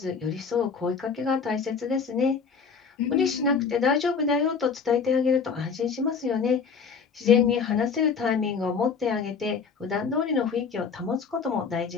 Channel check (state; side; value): quieter; right; 5.7 dB